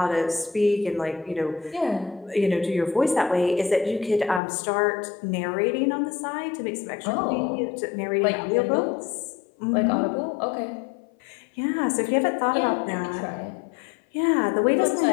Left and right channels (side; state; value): right; drops out; at 4.4 s